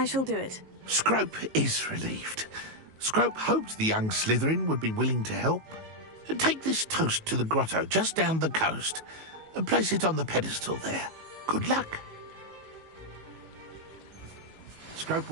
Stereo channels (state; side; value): late; left; 19 ms